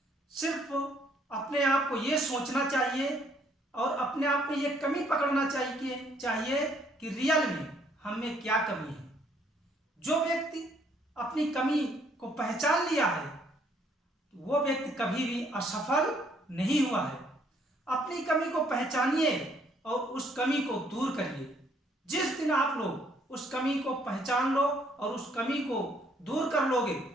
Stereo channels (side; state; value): both; normal; correlation 0.66